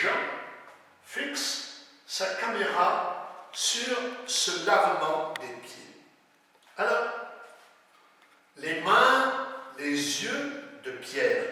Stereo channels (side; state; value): both; identical; correlation 1.00